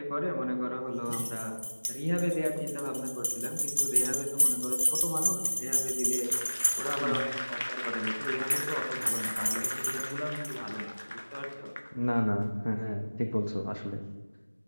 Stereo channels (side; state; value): both; inverted; correlation -1.00